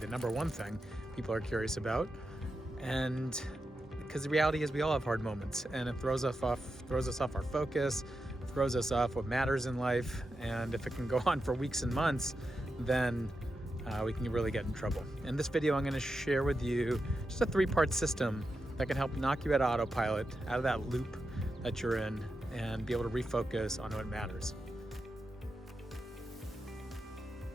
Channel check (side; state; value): both; normal; correlation 0.88